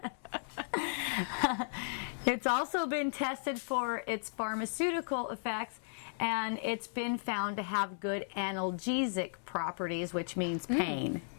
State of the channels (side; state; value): right; silent; 54 dB below the other